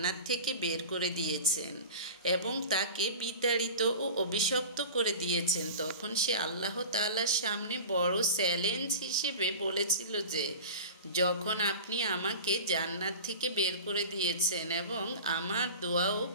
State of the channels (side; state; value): both; inverted; correlation -0.34